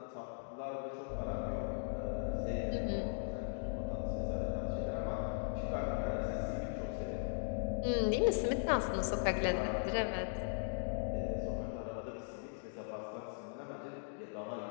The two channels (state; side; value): silent; right; digital silence